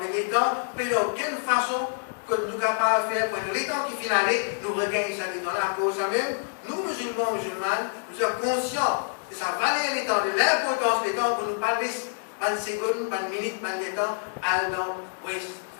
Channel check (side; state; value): right; silent; 60 dB below the other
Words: les temps, mais d'aucune façon que nous sommes capables de faire, pour les temps qui finissent, nous regagnons ça les temps là, à cause de ça même. Nous, musulmans, nous sommes conscients de sa valeur des temps, de l'importance des temps pour nous pas laisser, pas une seconde, pas une minute, pas de temps, à